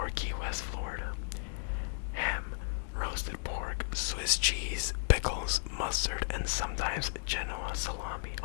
Key West, Florida. Ham, roasted pork, Swiss cheese, pickles, mustard, and sometimes Genoa salami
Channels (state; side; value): silent; right; digital silence